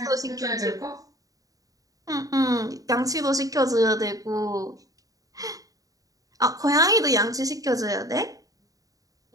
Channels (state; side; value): late; left; 0.17 ms